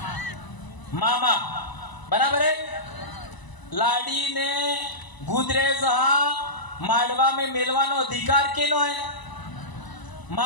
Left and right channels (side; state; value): right; late; 1.0 ms